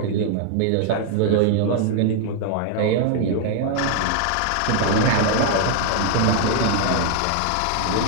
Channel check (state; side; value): different; both; correlation 0.00